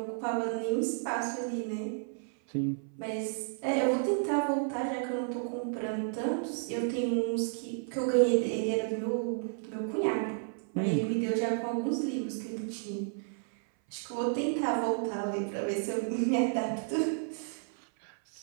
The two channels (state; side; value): silent; left; 56 dB below the other